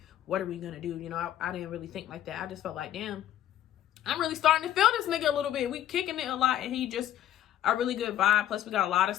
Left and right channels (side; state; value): right; quieter; 11.8 dB